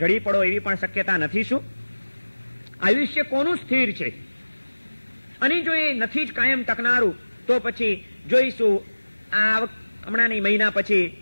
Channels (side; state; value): both; inverted; correlation -1.00